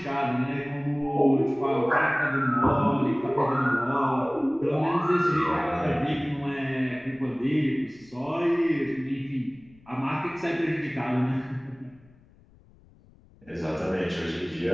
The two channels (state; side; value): noise; left; rumble, 27 dB below the sound